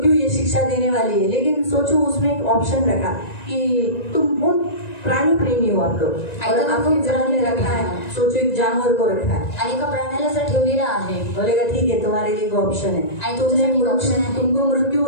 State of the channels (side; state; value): right; late; 1.9 ms